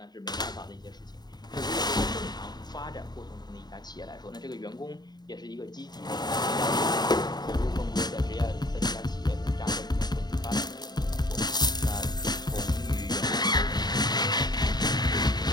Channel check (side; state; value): right; late; 0.20 ms